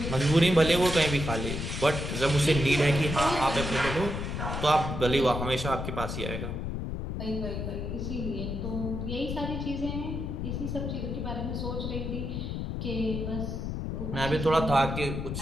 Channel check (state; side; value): noise; left; rumble, 4 dB below the sound